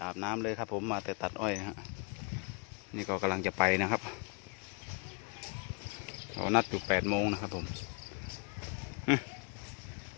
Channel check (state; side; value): quieter; right; 32.8 dB